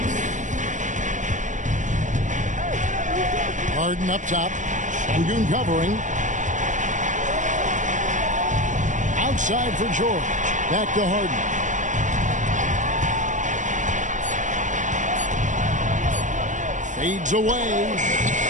Harden up top. Sengun covering. Outside for George. Back to Harden. Fades away.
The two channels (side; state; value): left; late; 0.36 ms